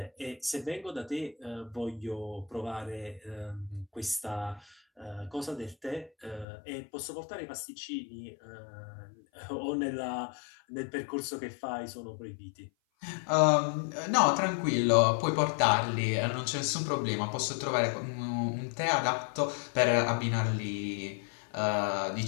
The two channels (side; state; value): right; drops out; at 6.5 s